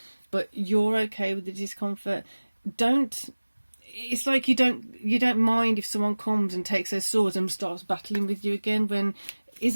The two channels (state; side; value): inverted; both; correlation -1.00